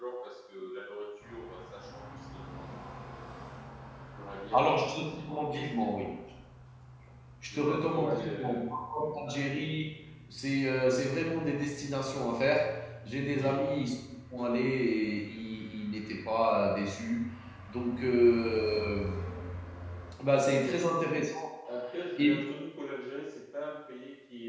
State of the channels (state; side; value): identical; both; correlation 1.00